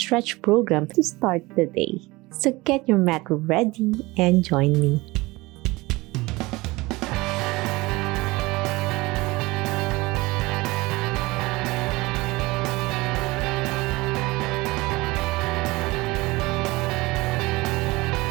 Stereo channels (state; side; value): quieter; left; 21.8 dB